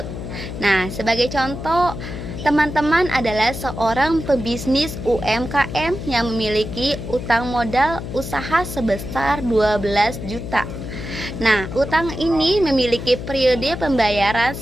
Nah, sebagai contoh, teman-teman adalah seorang pebisnis UMKM yang memiliki utang modal usaha sebesar 12 juta. Nah, utang ini memiliki periode pembayaran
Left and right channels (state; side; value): noise; left; hum, 8 dB below the sound